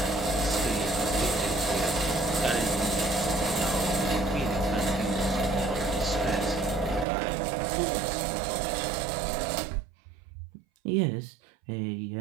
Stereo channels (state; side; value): drops out; left; at 7.1 s